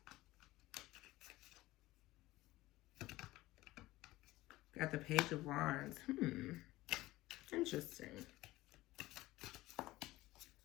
Got the Page of Wands. Interesting.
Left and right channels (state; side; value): quieter; right; 17.8 dB